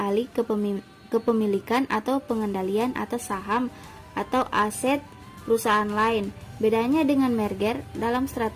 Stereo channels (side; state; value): both; identical; correlation 1.00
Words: alih kepemilikan atau pengendalian atas saham atau aset perusahaan lain. Bedanya dengan merger, dalam